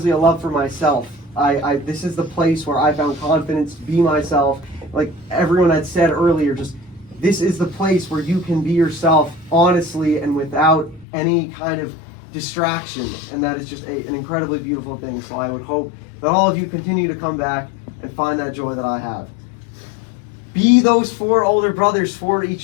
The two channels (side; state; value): right; drops out; at 11.1 s